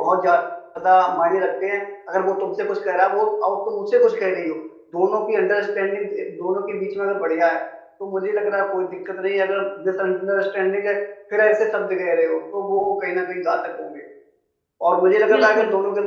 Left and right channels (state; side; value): identical; both; correlation 1.00